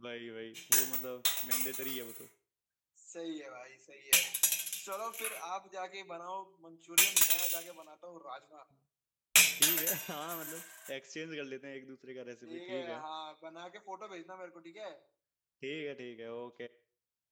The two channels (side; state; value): both; identical; correlation 1.00